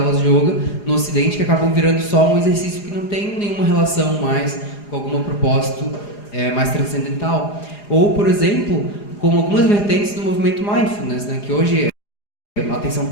de yoga no Ocidente que acabam virando só um exercício que não tem nenhuma relação mais com algum propósito mais transcendental. Ou, por exemplo, como algumas vertentes do movimento Mindfulness, né, que hoje a atenção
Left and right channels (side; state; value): right; late; 4.9 ms